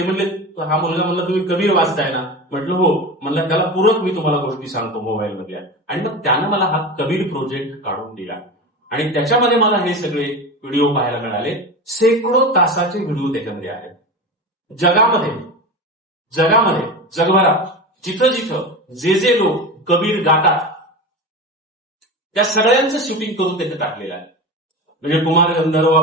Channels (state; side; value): normal; both; correlation 0.27